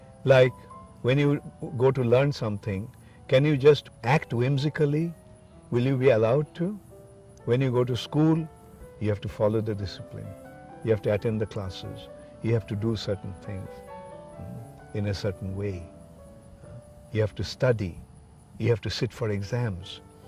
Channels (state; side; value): identical; both; correlation 1.00